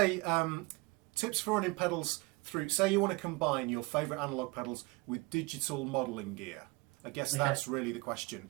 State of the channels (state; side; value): quieter; left; 24.6 dB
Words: tips for running pedals through. Say you want to combine your favourite analog pedals with digital modelling gear. I guess that's really the question,